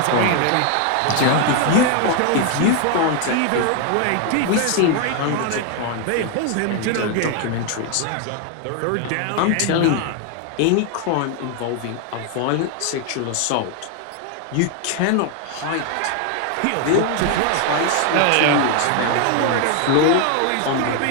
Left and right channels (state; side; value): different; both; correlation 0.00